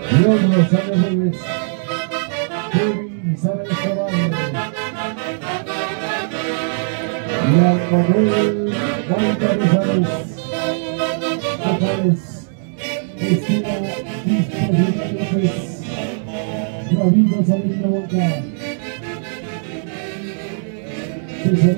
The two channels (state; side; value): silent; left; digital silence